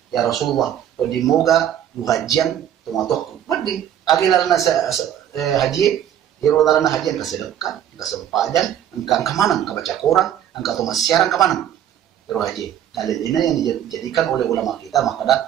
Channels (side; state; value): left; quieter; 10.4 dB